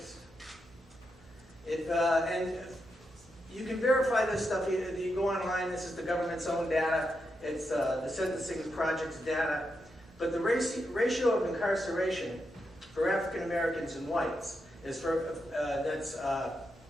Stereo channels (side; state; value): both; normal; correlation 0.84